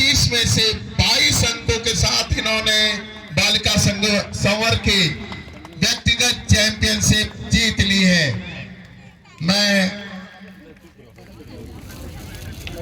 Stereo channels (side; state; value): both; identical; correlation 1.00